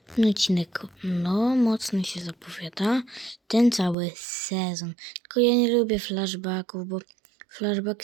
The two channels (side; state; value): left; drops out; at 4.0 s